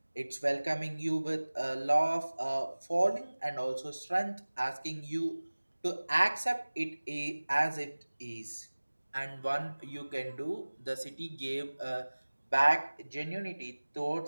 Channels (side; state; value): both; inverted; correlation -1.00